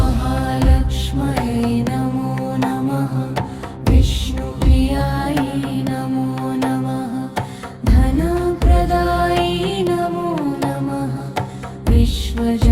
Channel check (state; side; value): identical; both; correlation 1.00